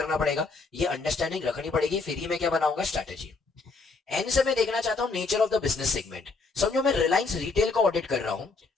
पड़ेगा, ये अंडरस्टैंडिंग रखनी पड़ेगी, फिर ही मैं क्या बनाऊंगा, स्ट्रैटेजी। एन से मैं देखना चाहता हूं nature of the business segment. समझो मैं रिलायंस रिटेल का ऑडिट कर रहा हूं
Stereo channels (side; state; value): right; quieter; 4.0 dB